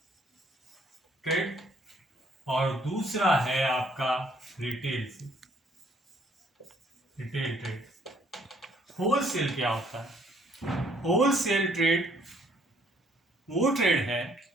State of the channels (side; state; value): both; normal; correlation 0.64